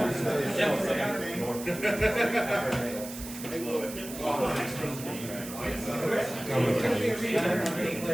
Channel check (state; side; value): noise; right; hiss, 12 dB below the sound